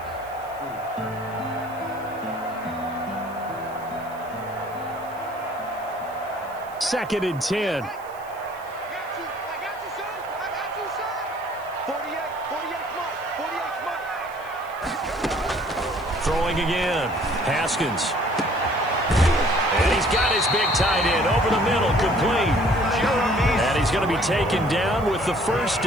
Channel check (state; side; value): noise; right; hiss, 24 dB below the sound